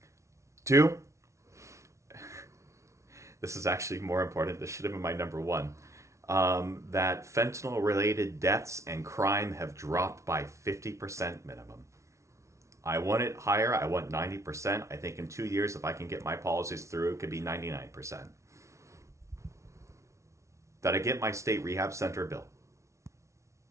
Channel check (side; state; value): left; late; 0.14 ms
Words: Two, this is actually more important. This should have been my number one. That fentanyl related deaths and crime have dropped by 50% minimum. I want it higher. I want 90%. I think in 2 years, if I can get my policies through, it could be 99%. That I get my state rehab center bill.